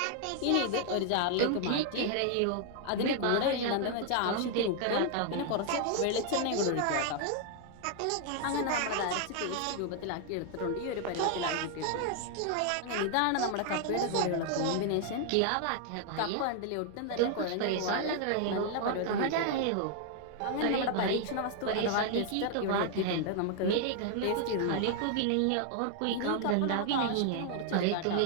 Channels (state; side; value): different; both; correlation 0.00